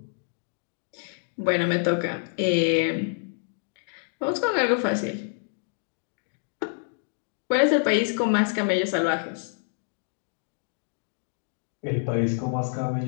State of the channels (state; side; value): silent; right; digital silence